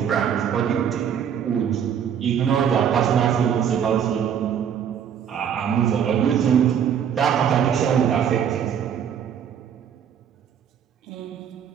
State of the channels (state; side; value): quieter; left; 8.4 dB